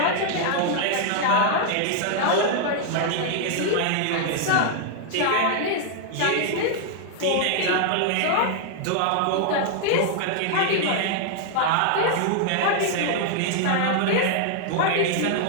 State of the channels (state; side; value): different; both; correlation 0.00